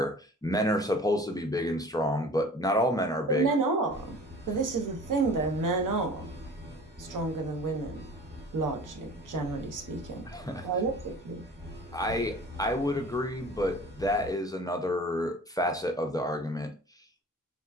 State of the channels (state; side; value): normal; both; correlation 0.44